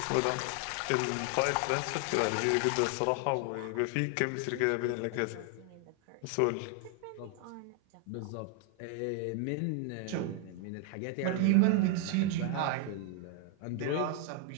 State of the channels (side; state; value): both; different; correlation 0.00